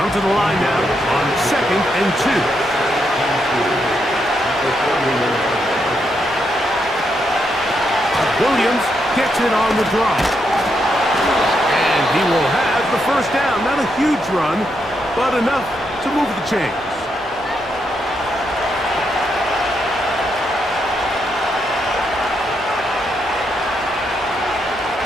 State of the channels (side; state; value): both; normal; correlation 0.80